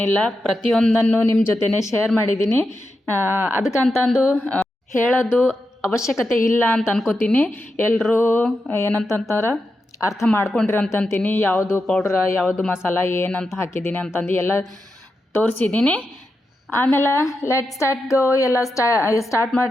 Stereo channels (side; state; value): both; normal; correlation 0.88